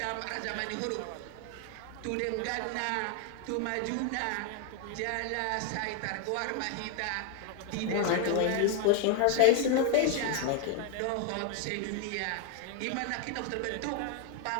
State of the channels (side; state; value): both; different; correlation 0.00